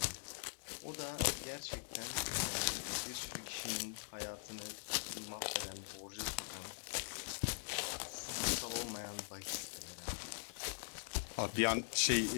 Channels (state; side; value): silent; right; digital silence